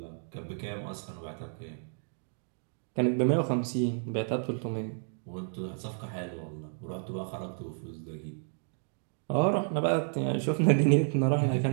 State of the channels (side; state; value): left; silent; 57 dB below the other